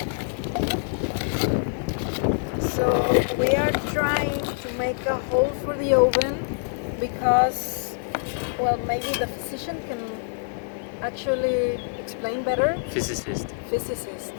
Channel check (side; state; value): right; silent; 58 dB below the other